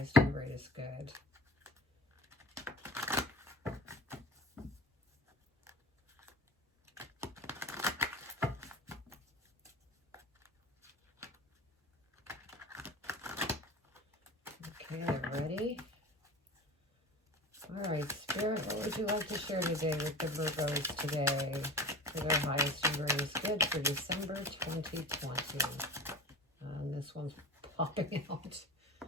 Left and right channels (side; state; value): both; normal; correlation 0.34